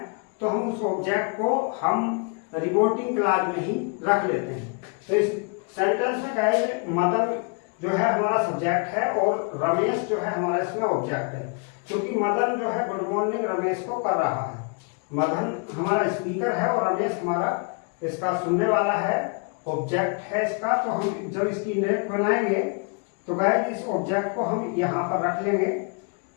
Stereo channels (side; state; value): right; quieter; 36.0 dB